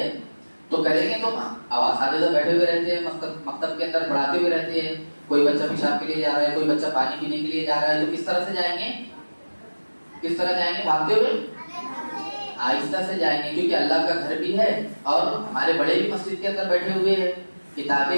तो करेंगे तो आवाज आगे तो बैठे हुए रहते हैं, मकतब के अंदर पढ़ाते हुए रहते हैं। कोई बच्चा पेशाब के लिए जा रहा है, कोई बच्चा पानी पीने के लिए जा रहा है, तो किस तरह से जाएंगे? किस तरह जाएंगे? भागते हुए, आहिस्ता से जाएंगे, क्योंकि अल्लाह का घर भी है और हमारे बड़े भी मस्जिद के अंदर बैठे हुए हैं, किताबें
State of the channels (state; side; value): inverted; both; correlation -1.00